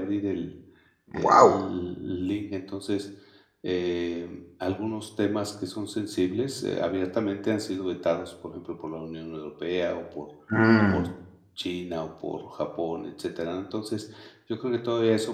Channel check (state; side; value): identical; both; correlation 1.00